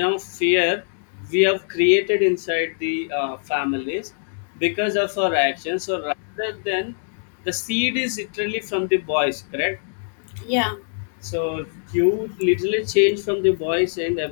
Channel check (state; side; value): silent; right; digital silence